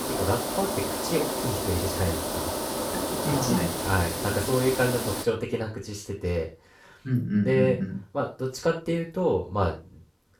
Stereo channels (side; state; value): both; identical; correlation 1.00